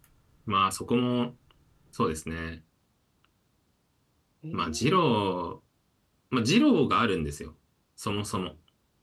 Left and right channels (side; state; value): both; identical; correlation 1.00